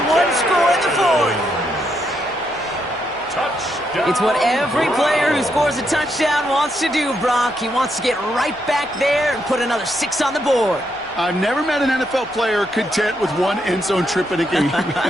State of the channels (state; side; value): noise; right; hum, 27 dB below the sound